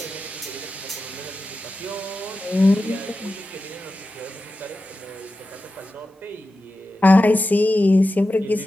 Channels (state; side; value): normal; both; correlation 0.92